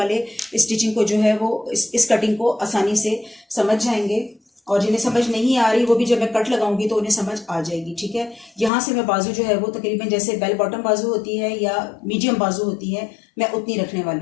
स्टिचिंग को जो है वो इस कटिंग को आसानी से समझ जाएंगे और जिन्हें समझ नहीं आ रही वो भी जब मैं कट लगाऊंगी तो उन्हें समझ आ जाएगी, ठीक है। यहाँ से मैं बाजू जो है वो तकरीबन जैसे बेल बॉटम बाजू होती है या मीडियम बाजू होती है, मैं उतनी रखने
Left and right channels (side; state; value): right; drops out; at 8.7 s